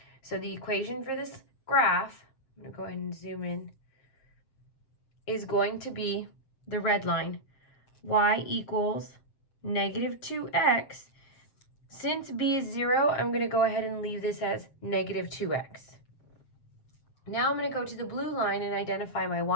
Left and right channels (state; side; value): late; right; 7.5 ms